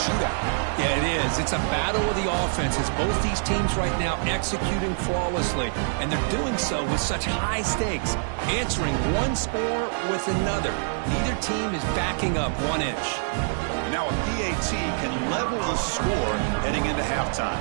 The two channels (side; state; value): left; silent; digital silence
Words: Yeah, it is. It's a battle of the offenses. Both these teams right now executing flawlessly. And they're doing so with such high stakes. Answering one score with another. Neither team is backing up 1 inch. Now a PAT can level the score heading into halftime.